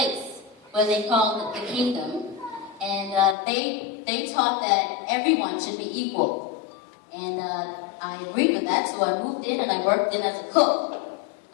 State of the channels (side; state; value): right; drops out; at 3.4 s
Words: where they called it the Kingdom, and they taught that everyone should be equal. And I agreed with that, so I moved in and I worked in as a cook.